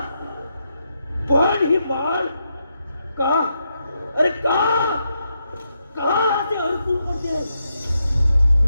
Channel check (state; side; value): inverted; both; correlation -0.82